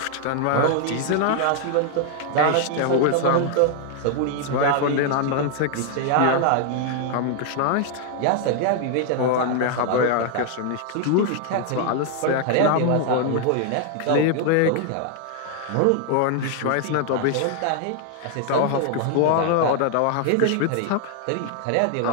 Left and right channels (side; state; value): both; different; correlation 0.00